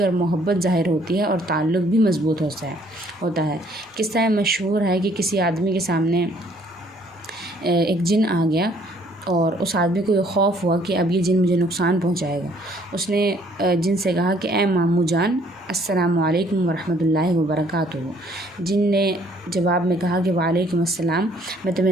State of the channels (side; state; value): both; normal; correlation 0.62